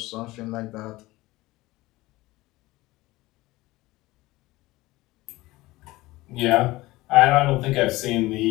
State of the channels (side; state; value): right; quieter; 19.3 dB